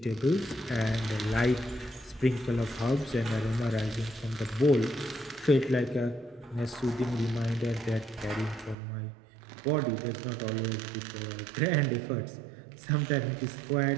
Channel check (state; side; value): drops out; left; at 8.8 s